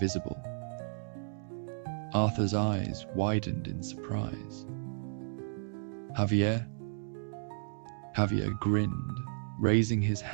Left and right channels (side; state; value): left; silent; digital silence